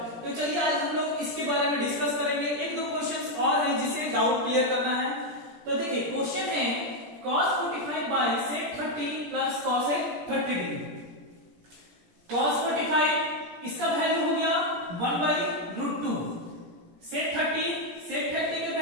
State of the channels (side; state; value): left; late; 17 ms